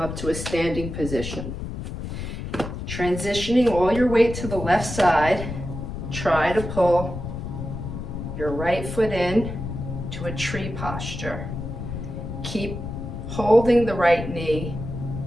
to a standing position. Transitioning all your weight to the left side, try to pull your right foot in to a tree posture. Keep holding the right knee,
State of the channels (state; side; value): noise; left; rumble, 7 dB below the sound